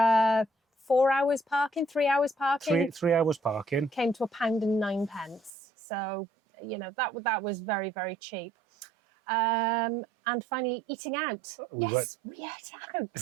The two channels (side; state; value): left; drops out; at 5.5 s